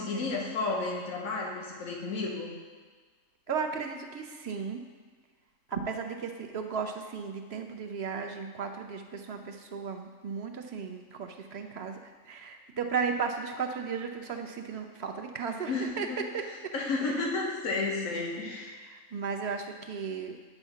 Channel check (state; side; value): late; right; 3.0 ms